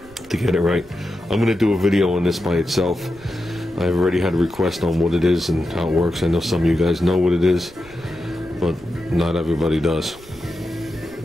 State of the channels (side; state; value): right; noise; rumble, 23 dB below the sound